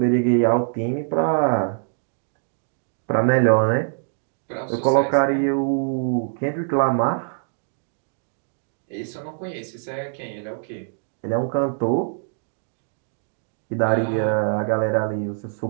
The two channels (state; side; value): silent; left; digital silence